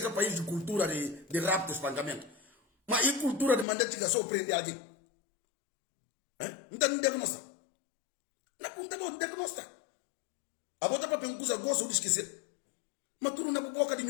um país de cultura de rapto e espancamento. Mas e cultura de mandar tiga só prender alguém? Não tem diagnóstico. Não tem diagnóstico. A bota para pencusa gosto de esquecer. Mas tu não é boca de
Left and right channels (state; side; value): drops out; right; at 3.7 s